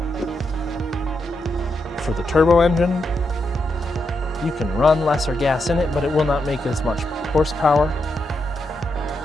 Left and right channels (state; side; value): normal; both; correlation 0.83